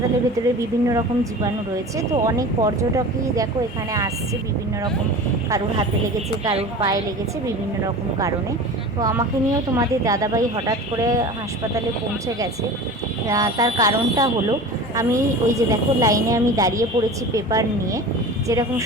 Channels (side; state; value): both; normal; correlation 0.35